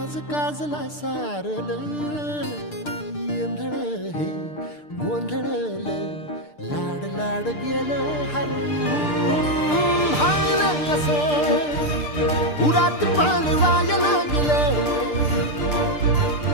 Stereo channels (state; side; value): late; right; 6.7 ms